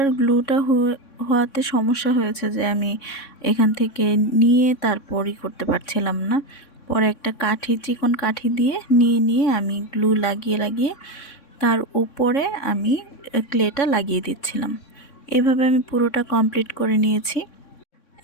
গ্লুটা হওয়াতে সমস্যা হয়েছে যে আমি এখান থেকে নিয়ে তারপরই করতে পারছিলাম না। পরে একটা কাঠি, চিকন কাঠি দিয়ে নিয়ে আমি গ্লু লাগিয়ে তার উপরে আমি ক্লেটা লাগিয়ে দিচ্ছিলাম। এভাবে আমি পুরোটা কমপ্লিট করে নিয়েছি।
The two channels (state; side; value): late; right; 3.6 ms